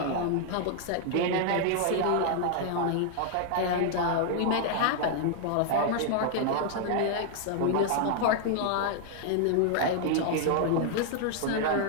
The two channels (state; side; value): different; both; correlation 0.00